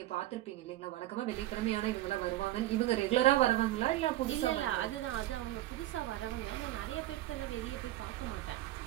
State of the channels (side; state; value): left; quieter; 15.3 dB